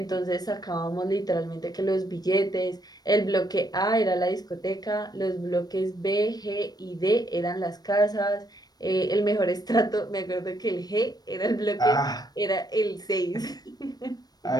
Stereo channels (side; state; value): right; late; 0.19 ms